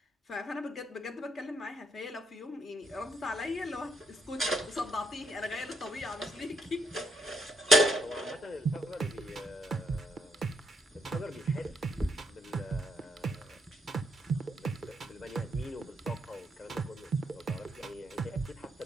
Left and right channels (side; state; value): both; normal; correlation 0.76